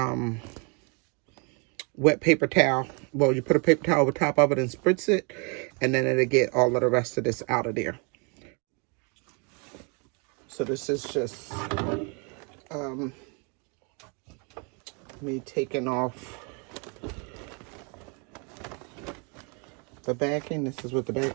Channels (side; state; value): left; quieter; 34.0 dB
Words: wet paper towel. Well, you put a paper towel over top of it and spritz it, and then it'll get all of the rest of this out of there. So this is just me taking off the backing. This is what the